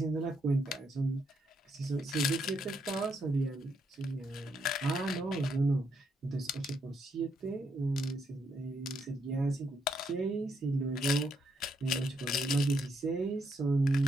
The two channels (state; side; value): normal; both; correlation 0.76